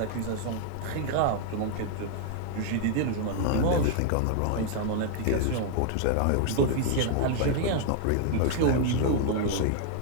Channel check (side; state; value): both; different; correlation 0.00